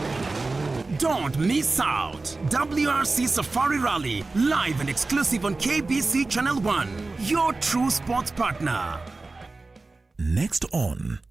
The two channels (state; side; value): quieter; left; 3.5 dB